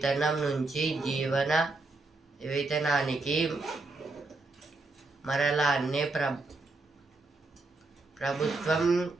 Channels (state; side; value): quieter; left; 3.3 dB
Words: నుంచి జీవన వేతనానికి మరలాన్నే ప్రభుత్వం